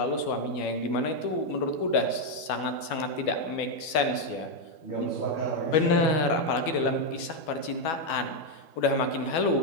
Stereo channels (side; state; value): right; late; 12 ms